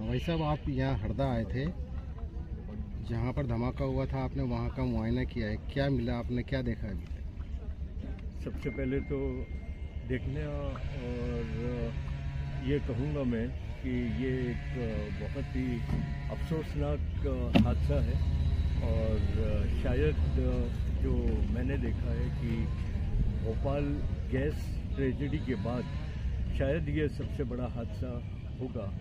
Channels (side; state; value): both; identical; correlation 1.00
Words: भाई साहब, आप यहाँ हरदा आए थे, जहाँ पर धमाका हुआ था, आपने वहाँ का मुआयना किया है, क्या मिला, आपने क्या देखा अभी तक? सबसे पहले तो देखने और ये कहूँगा मैं कि ये एक बहुत ही अफसोसनाक हादसा है और शायद जो मैंने देखा है कि भोपाल गैस ट्रेजेडी के बाद शायद ये सबसे बड़ा हादसा होगा